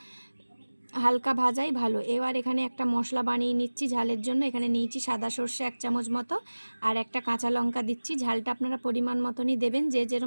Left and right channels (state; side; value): inverted; both; correlation -1.00